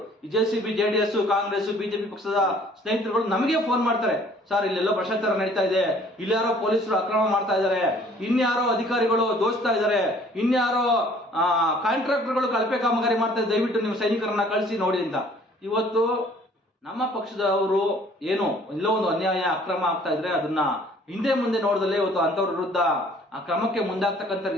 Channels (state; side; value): normal; both; correlation 0.55